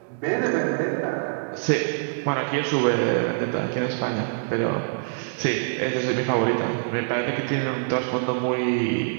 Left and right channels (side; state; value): left; silent; digital silence